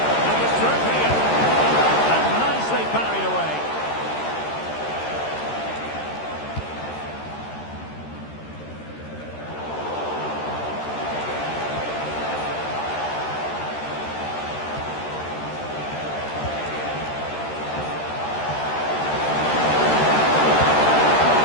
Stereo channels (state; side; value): late; right; 13 ms